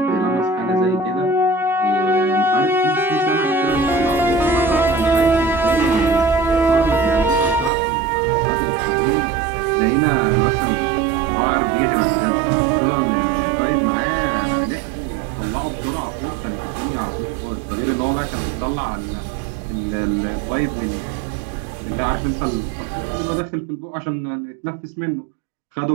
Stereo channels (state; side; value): drops out; left; at 7.7 s